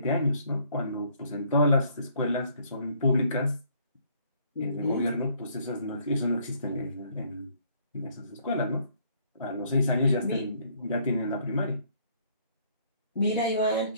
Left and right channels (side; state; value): both; inverted; correlation -0.63